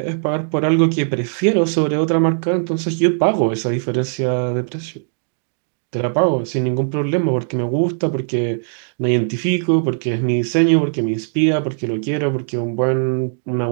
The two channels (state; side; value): silent; left; digital silence